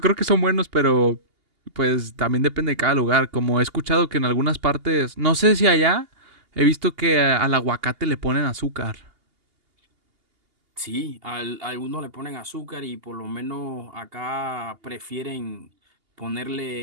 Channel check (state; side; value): late; left; 2.8 ms